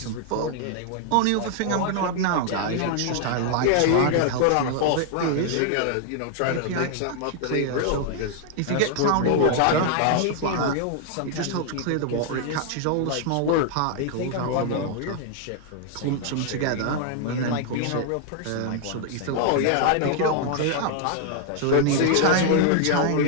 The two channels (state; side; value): different; both; correlation 0.00